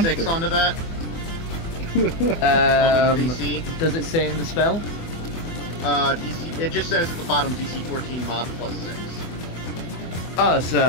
6 onto that? DC? Does it say in the spell? DC, it just says at the bottom DC 14 mod plus 6. Oh,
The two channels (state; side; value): late; right; 24 ms